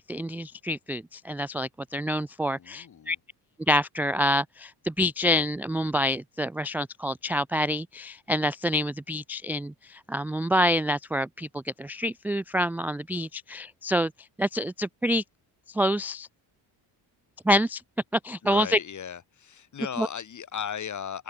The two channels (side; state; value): both; normal; correlation 0.64